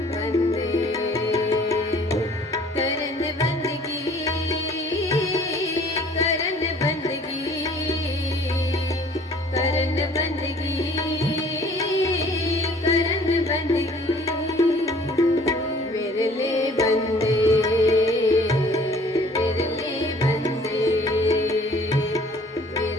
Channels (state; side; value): normal; both; correlation 0.54